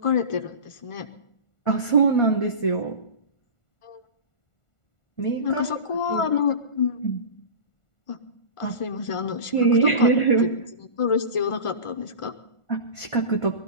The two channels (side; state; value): right; late; 1.4 ms